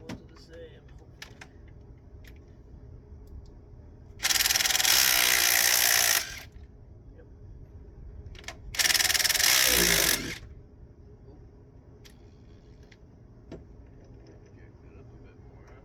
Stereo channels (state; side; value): identical; both; correlation 1.00